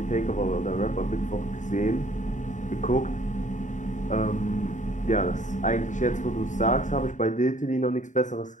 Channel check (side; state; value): right; late; 0.36 ms